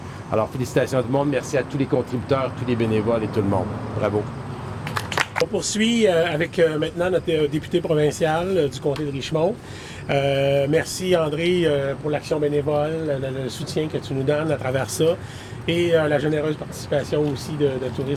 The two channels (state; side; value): identical; both; correlation 1.00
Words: Alors, félicitations à tout le monde. Merci à tous les contributeurs, tous les bénévoles et tout le monde. Bravo. On poursuit avec maintenant notre député provincial du comté de Richemont. Merci André pour l'action bénévole, le soutien que tu nous donnes à travers ça et la généreuse participation aussi de